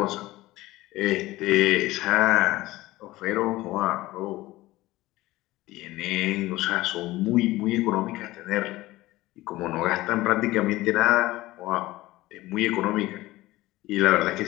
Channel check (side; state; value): right; quieter; 18.1 dB